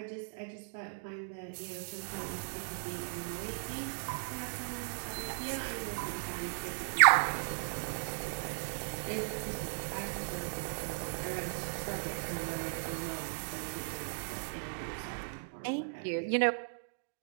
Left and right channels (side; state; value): left; silent; digital silence